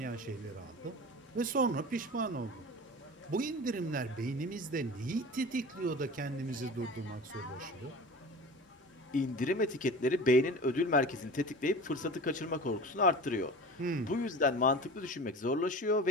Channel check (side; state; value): both; normal; correlation 0.35